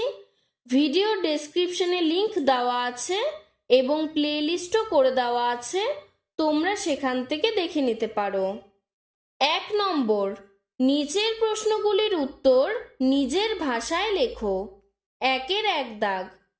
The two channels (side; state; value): both; identical; correlation 1.00